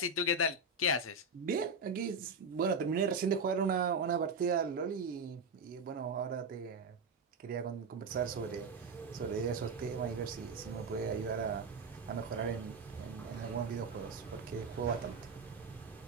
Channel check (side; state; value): left; quieter; 3.5 dB